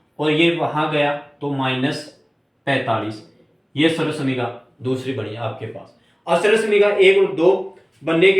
और ये वहां गया तो माइनस 45, ये सर्वसमीका दूसरी बनी आपके पास। और सर्वसमीका 1 और 2 बनने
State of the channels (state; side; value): identical; both; correlation 1.00